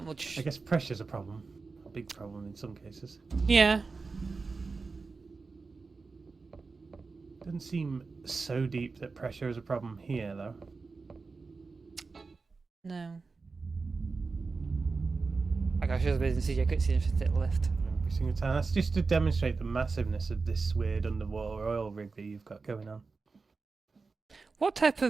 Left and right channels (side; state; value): left; quieter; 4.3 dB